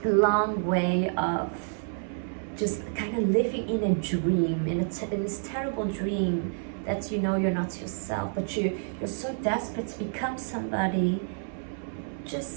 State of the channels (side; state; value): left; silent; 59 dB below the other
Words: long way of just kind of living in a dream, in this terrible dream that you know you're not yourself, but you're so desperate to become somebody